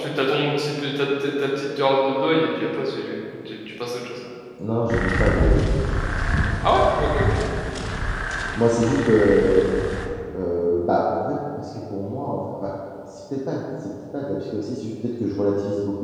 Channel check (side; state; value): both; identical; correlation 1.00